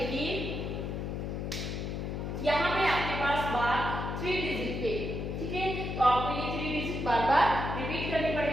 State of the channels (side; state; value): left; noise; hum, 3 dB below the sound